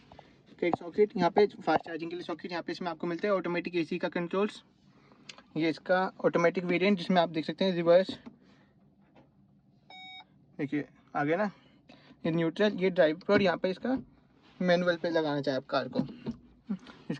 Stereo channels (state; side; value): identical; both; correlation 1.00